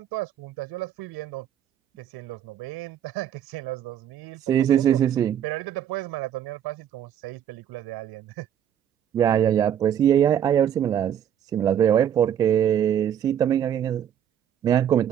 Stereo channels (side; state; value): left; quieter; 9.8 dB